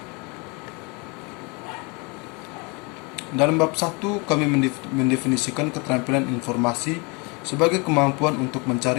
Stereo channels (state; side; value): quieter; right; 30.0 dB